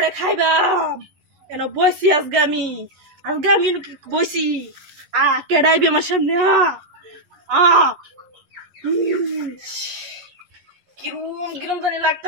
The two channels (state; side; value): late; left; 11 ms